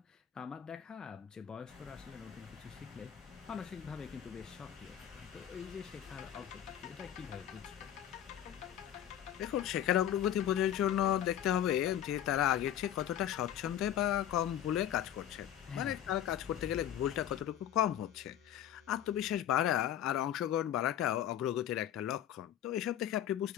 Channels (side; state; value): right; quieter; 11.0 dB